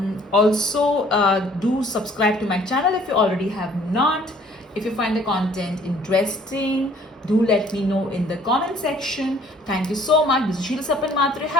also do subscribe to my channel if you already have not. If you find the content interesting, do let me know in the comment section. Thank you so much. This is Siecle Kipper.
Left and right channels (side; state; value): both; normal; correlation 0.57